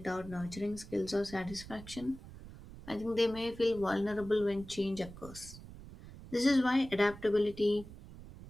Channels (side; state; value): right; noise; rumble, 15 dB below the sound